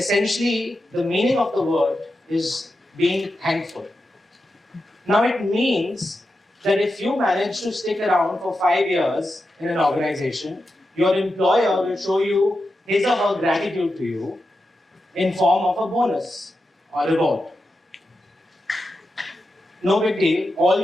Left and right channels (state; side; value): normal; both; correlation 0.89